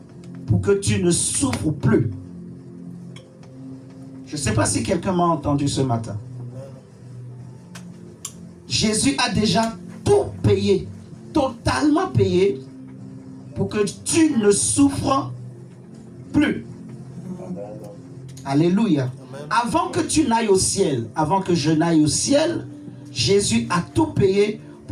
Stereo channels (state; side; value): identical; both; correlation 1.00